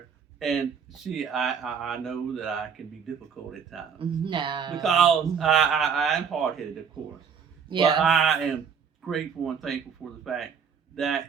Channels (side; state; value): left; quieter; 6.9 dB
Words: And I know that I can be difficult at times. No. Because I am hard-headed, of course. Yeah. But I am grateful and thankful for the fact